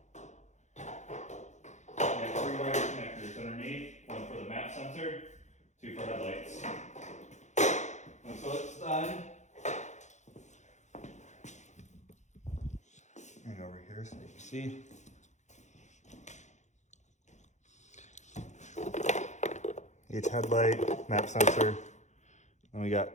got 3 wire connectors underneath, one for the map sensor, 2 for headlights. And so it's done. And over here so you can see. Each headlight, map sensor, and we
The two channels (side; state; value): right; late; 0.34 ms